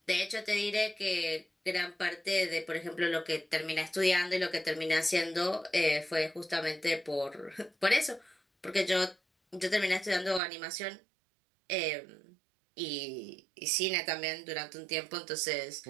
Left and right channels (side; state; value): left; drops out; at 10.4 s